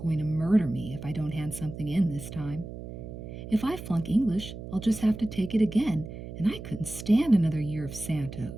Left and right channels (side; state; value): right; noise; hum, 11 dB below the sound